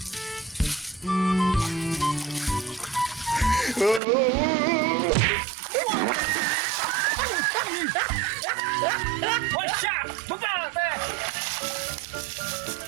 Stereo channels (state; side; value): drops out; left; at 4.0 s